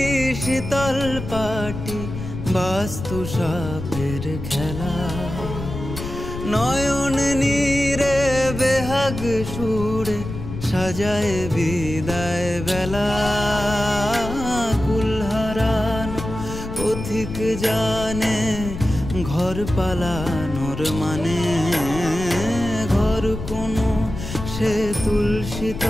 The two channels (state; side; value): noise; left; rumble, 8 dB below the sound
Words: শীতল পাটি বাস্তু সাপের খেলা, নয়ন নীরে বেহাগ সুরে সাজায় বিদায় বেলা। কুল হারানো পথিক জানে ঘর পালানোর মানে, ঘর কোনো সে তুলসী